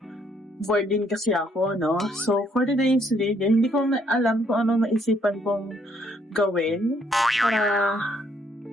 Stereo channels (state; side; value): normal; both; correlation 0.69